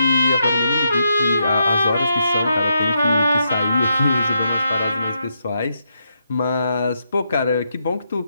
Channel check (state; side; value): inverted; both; correlation -0.80